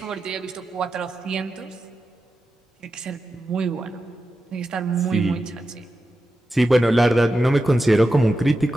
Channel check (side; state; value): both; normal; correlation 0.91